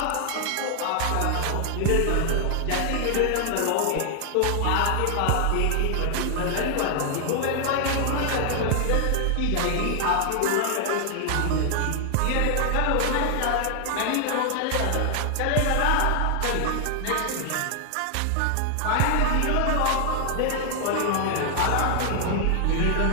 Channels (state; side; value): different; both; correlation 0.00